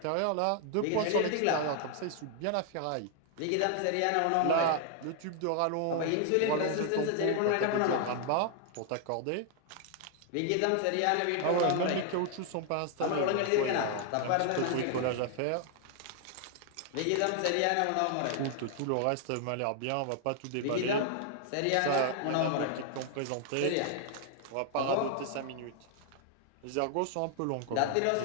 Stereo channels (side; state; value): both; different; correlation 0.00